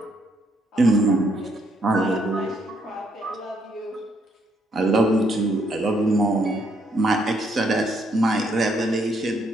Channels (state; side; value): normal; both; correlation 0.72